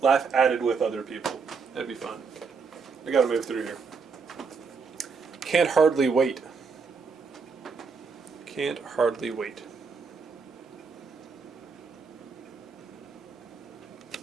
with other people. That'd be fun. I gotta move through here. Can't hardly wait. Can't hardly wait.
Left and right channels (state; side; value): quieter; left; 5.2 dB